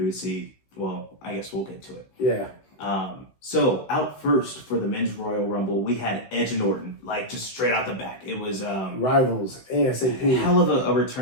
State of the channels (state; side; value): late; right; 15 ms